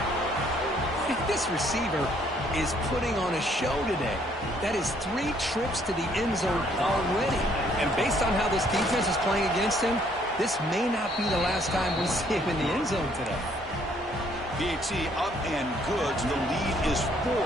This receiver is putting on a show today. That is 3 trips to the end zone already. And based on how this defense is playing against him, this may not be the last time we see him in the end zone today. PAT up and good. So the lead is 4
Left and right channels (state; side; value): normal; both; correlation 0.65